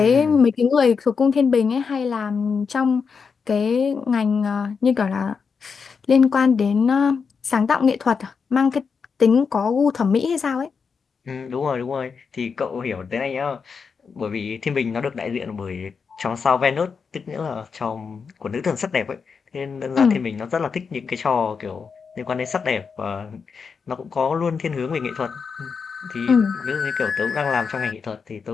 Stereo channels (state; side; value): quieter; right; 5.6 dB